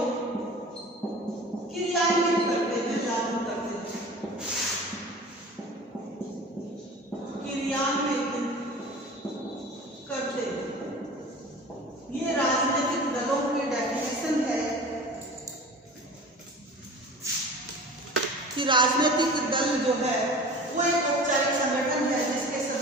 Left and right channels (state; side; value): normal; both; correlation 0.39